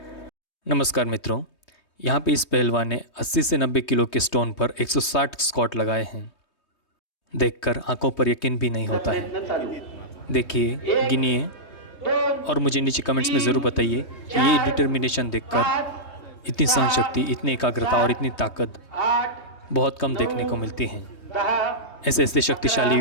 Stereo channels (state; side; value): late; right; 3.2 ms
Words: नमस्कार मित्रों, यहाँ पे इस पहलवान ने 80 से 90 किलो के स्टोन पर 160 स्क्वाट लगाए हैं। देखकर आंखों पर यकीन भी नहीं होता है। देखिए, गिनिए और मुझे नीचे कमेंट्स में ज़रूर बताइए कि ये डिटर्मिनेशन देखकर इतनी सहनशक्ति, इतनी एकाग्रता और इतनी ताकत बहुत कम देखने को मिलती हैं। ऐसे ऐसे शक्तिशाली